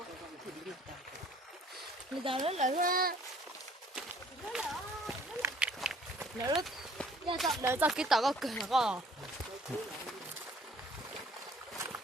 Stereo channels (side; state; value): both; normal; correlation 0.56